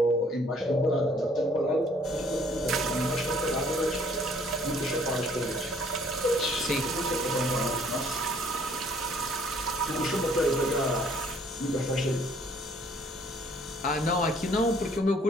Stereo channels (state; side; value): normal; both; correlation 0.60